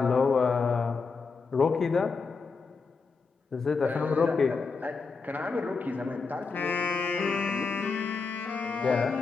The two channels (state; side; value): quieter; right; 4.6 dB